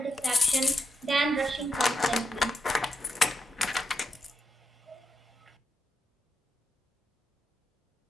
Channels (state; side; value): normal; both; correlation 0.83